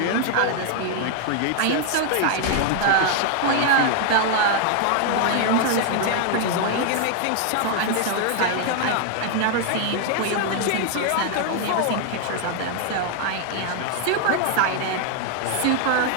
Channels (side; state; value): both; different; correlation 0.00